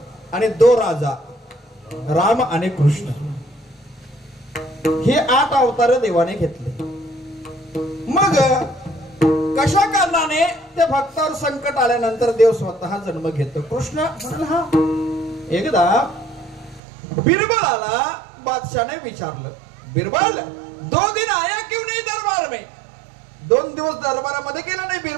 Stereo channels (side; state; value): left; drops out; at 16.8 s